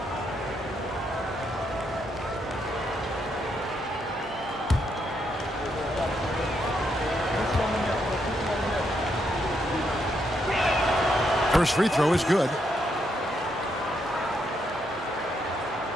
First free throw is good.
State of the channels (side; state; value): both; normal; correlation 0.78